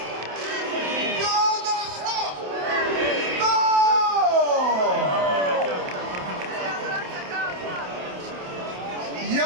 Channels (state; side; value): late; left; 28 ms